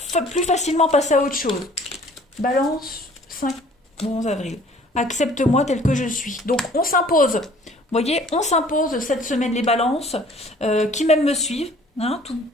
plus facilement passer à autre chose. Balance, 5, 11 avril. Accepte-moi tel que je suis. Donc, on s'impose. Vous voyez, on s'impose cette semaine les balances qui même me suivent. Hein,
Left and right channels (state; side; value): normal; both; correlation 0.54